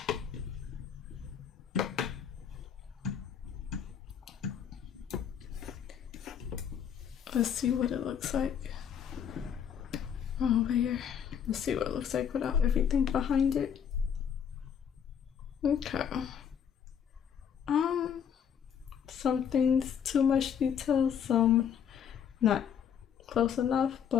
Let's see what it looks like over here. Let's see what it looks like without everything behind it. Okay. Some things too much detail, some not close enough,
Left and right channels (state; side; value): quieter; right; 8.2 dB